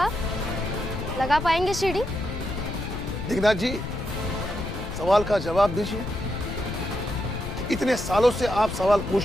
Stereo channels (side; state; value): left; noise; rumble, 7 dB below the sound